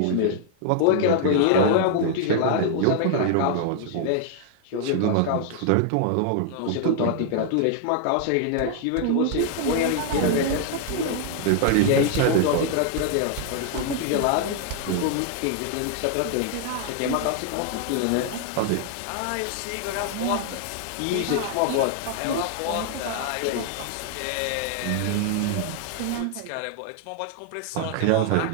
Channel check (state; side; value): different; both; correlation 0.00